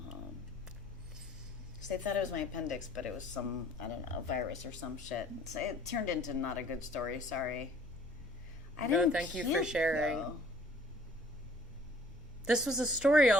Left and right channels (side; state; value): both; normal; correlation 0.57